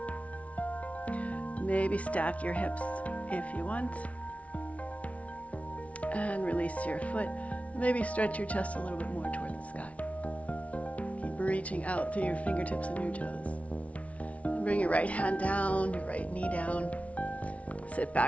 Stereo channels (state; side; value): late; right; 0.065 ms